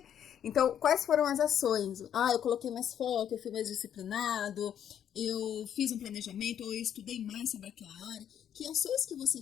Então, quais foram as ações? Eu coloquei mais foco, eu fui mais disciplinado, eu fiz um planejamento, ou eu estudei mais sobre aquela área. Que ações que você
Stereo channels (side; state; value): right; quieter; 9.6 dB